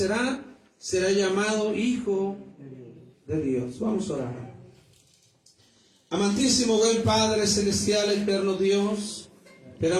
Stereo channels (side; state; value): both; identical; correlation 1.00